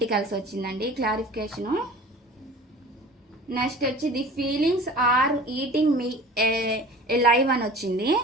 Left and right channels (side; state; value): both; normal; correlation 0.41